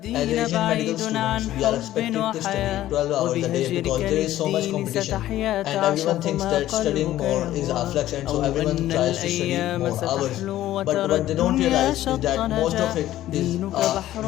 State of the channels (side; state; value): right; quieter; 13.9 dB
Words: medical students, we are expected to study 12 hours a day because there is so much competition, and everyone thinks that studying more is a flex, and so everyone tries to study more hours. But what they don't realize is that most of it is a